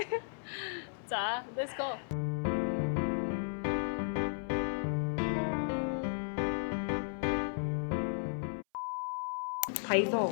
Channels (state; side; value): silent; right; 55 dB below the other